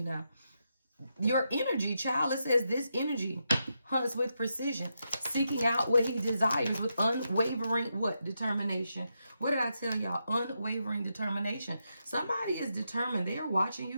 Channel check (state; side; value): inverted; both; correlation -0.84